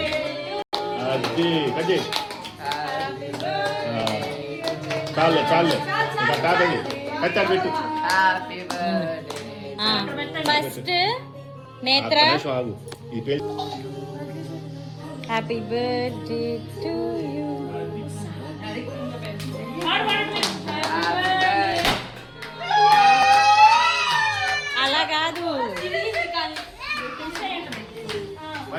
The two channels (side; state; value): both; identical; correlation 1.00